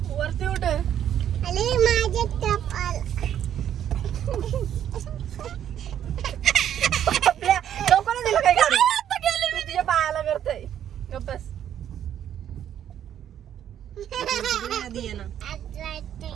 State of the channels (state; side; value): quieter; left; 10.2 dB